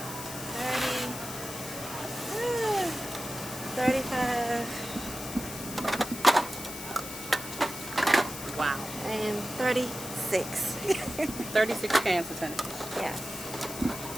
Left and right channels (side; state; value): left; noise; hiss, 9 dB below the sound